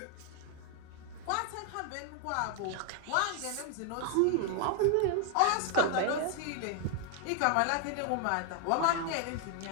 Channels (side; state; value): both; different; correlation 0.00